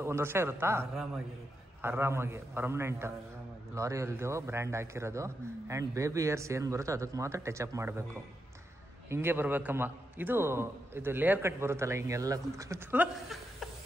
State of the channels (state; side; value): normal; both; correlation 0.85